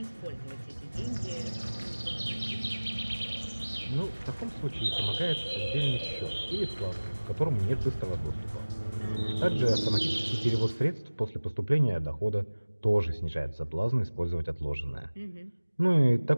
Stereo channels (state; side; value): inverted; both; correlation -1.00